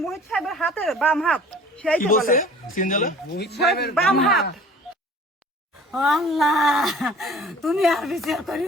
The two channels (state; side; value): normal; both; correlation 0.48